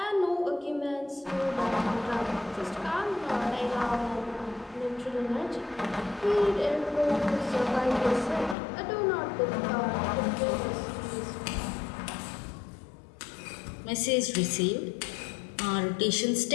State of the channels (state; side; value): drops out; right; at 8.6 s